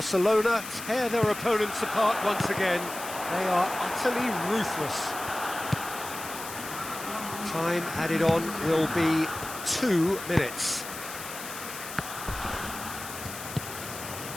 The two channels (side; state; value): left; noise; hiss, 10 dB below the sound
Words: tear their opponents apart once again. They are utterly ruthless. Time added on will be 2 minutes.